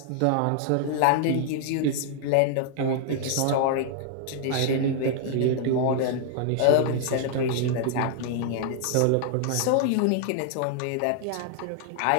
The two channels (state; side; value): different; both; correlation -0.01